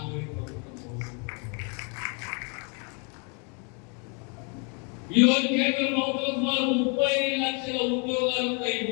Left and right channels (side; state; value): right; quieter; 35.9 dB